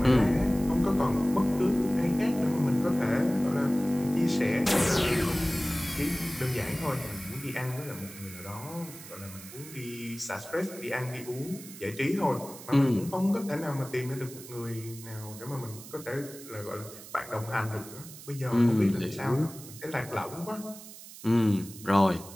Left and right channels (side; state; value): right; noise; hiss, 16 dB below the sound